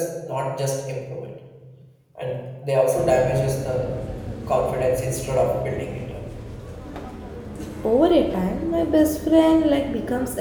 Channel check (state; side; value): identical; both; correlation 1.00